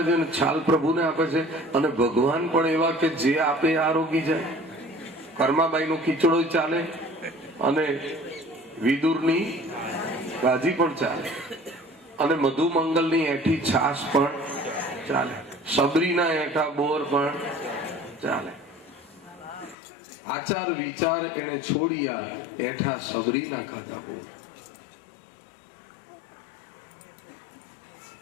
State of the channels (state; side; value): drops out; right; at 19.8 s